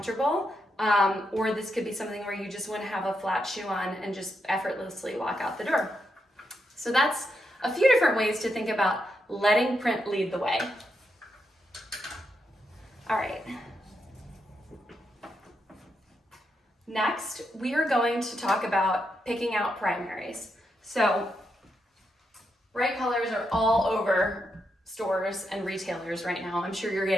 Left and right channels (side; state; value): both; normal; correlation 0.82